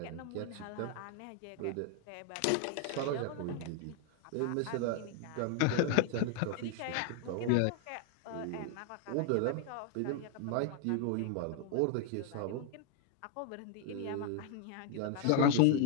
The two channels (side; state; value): both; different; correlation 0.00